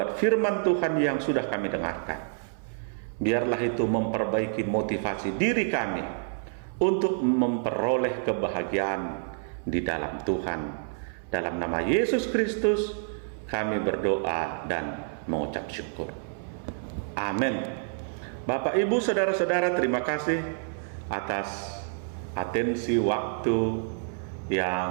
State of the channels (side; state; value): left; silent; 59 dB below the other